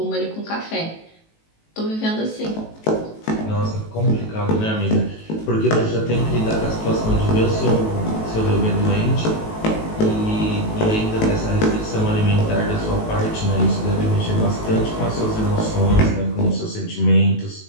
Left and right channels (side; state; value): right; late; 18 ms